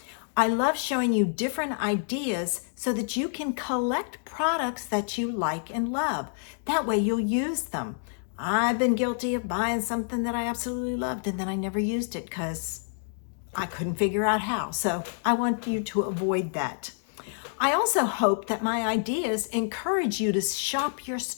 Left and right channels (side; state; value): right; silent; digital silence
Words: I love showing you different ideas so that you can collect products that you like and love. That way you'll use them. I've been guilty of buying something that I absolutely loved and then I never used it because I couldn't figure out how. So I want you to avoid that. I also hope that my ideas encourage you to shop your